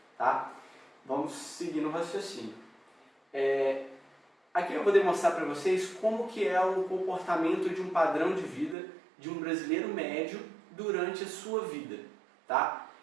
tá? Vamos seguir no raciocínio. Aqui eu vou demonstrar para vocês como que é o comportamento de um padrão de vida de um brasileiro médio durante a sua vida, tá?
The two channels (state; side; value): drops out; left; at 8.8 s